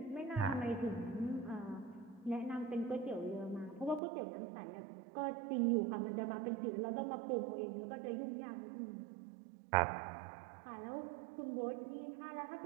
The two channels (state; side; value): drops out; left; at 4.0 s